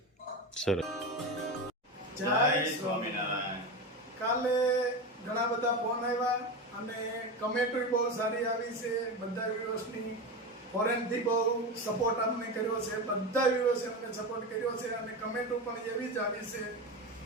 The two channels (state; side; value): normal; both; correlation 0.20